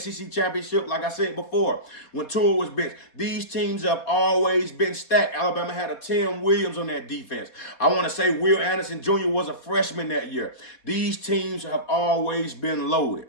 championship. Like I said before, when Tua was benched, these teams have always been stacked. Alabama had a Tim Williams on that defense. I want to say Will Anderson Jr. was a freshman that year. These teams have always been loaded,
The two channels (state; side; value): late; right; 4.0 ms